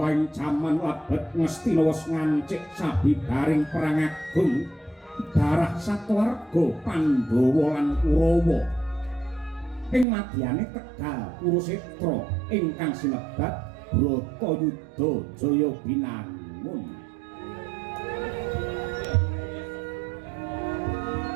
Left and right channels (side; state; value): left; drops out; at 10.1 s